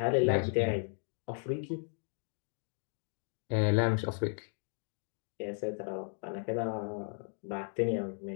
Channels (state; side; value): silent; right; 54 dB below the other